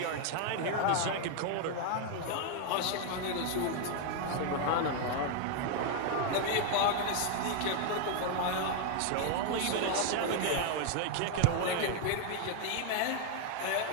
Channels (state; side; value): different; both; correlation 0.00